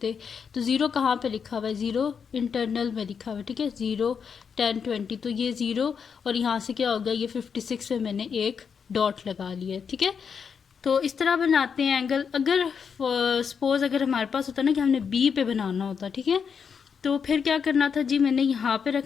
तो ज़ीरो कहाँ पे लिखा हुआ है, ज़ीरो इंटरनल में लिखा हुआ है। ठीक है, 0 10 20, तो ये ज़ीरो और यहाँ से क्या हो गया, ये 56 पे मैंने एक डॉट लगा लिया। ठीक है, तो इस तरह बनाते हैं एंगल। अगर सपोज अगर हमारे पास होता ना कि हमने B पे बनाना होता, ठीक है, तो फिर क्या करना था जी, मैंने यहाँ पे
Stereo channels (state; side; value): quieter; right; 6.5 dB